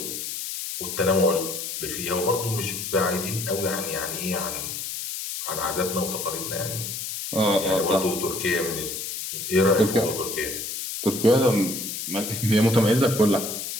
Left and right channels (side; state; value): left; noise; hiss, 5 dB below the sound